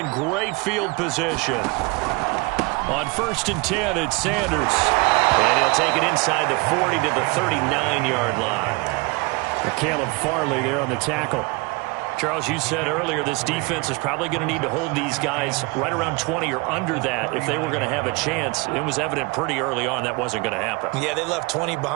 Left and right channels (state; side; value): quieter; left; 26.5 dB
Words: great field position. On 1st and 10, it's Sanders. And he'll take it inside the 40 to the 39-yard line. Caleb Farley there on the tackle. Charles, you said earlier this defense is probably going to need to hold these guys right around 20 or under that if they were going to have a chance. It was evident pretty early on that wasn't going to happen. Yeah, they left 20